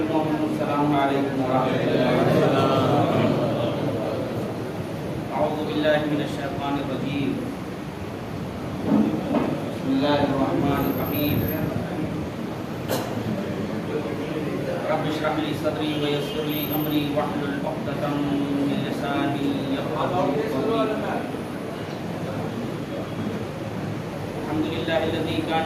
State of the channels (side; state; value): both; identical; correlation 1.00